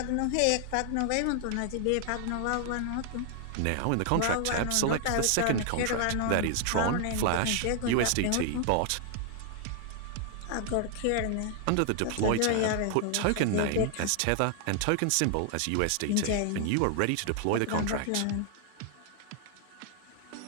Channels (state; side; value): different; both; correlation 0.00